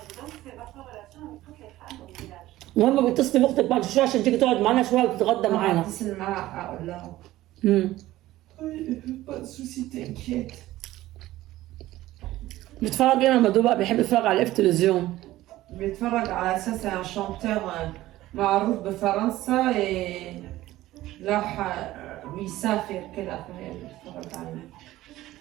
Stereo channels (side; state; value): left; quieter; 15.9 dB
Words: المهم بتصلي باختك بعد شويه عشان تيجي تقعد معانا شويه وتتغدى معانا. اتصل معاها اقول لها بيتفرج ايه مامادو بقى؟ بيحب يتفرج على التلفزيون. بيتفرج على اساس شانتور معروف بفرنسا، راح بيسافر كده فهي بيتفرج عليه.